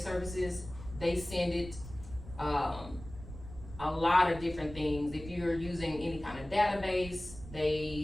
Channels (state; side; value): noise; right; rumble, 14 dB below the sound